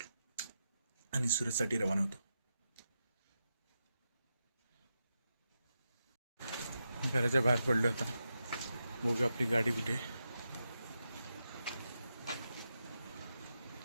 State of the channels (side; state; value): both; inverted; correlation -0.87